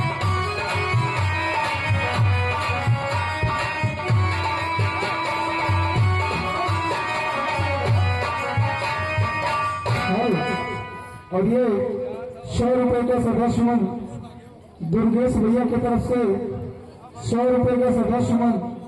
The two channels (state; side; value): identical; both; correlation 1.00